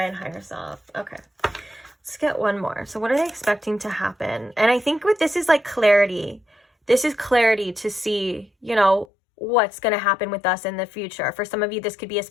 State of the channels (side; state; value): right; drops out; at 9.1 s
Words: and higher self. Okay. Let's get one more. So what are they expecting to happen? And I think with this is like clarity. This is clarity to see, you know, what's going to happen with us in the future. For some of you, this could be a